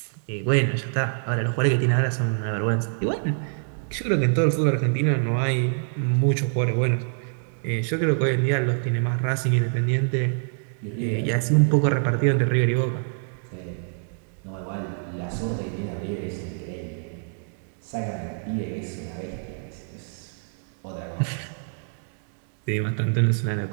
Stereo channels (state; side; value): silent; left; digital silence